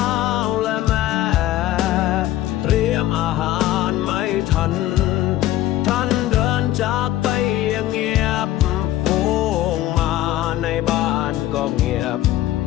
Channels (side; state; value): right; quieter; 14.3 dB